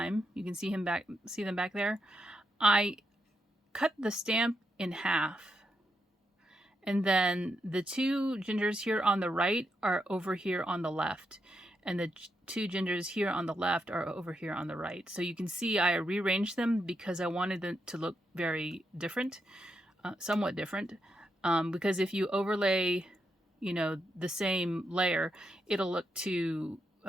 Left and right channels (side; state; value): both; normal; correlation 0.82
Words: You can see them back there. I cut the stamp in half, and then the two gingers here on the right are over here on the left, and the two gingers here on the left are over here on the right. So you can see I rearranged them because I wanted them to look very different, somewhat different, because if you overlay, you know, the same layer, it'll look too